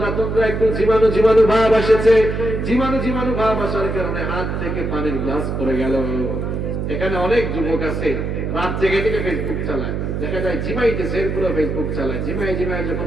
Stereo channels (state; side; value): noise; right; hum, 2 dB below the sound